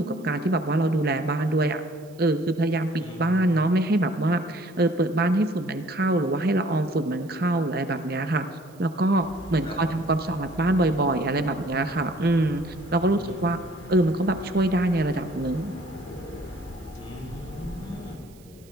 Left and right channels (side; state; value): right; noise; hiss, 28 dB below the sound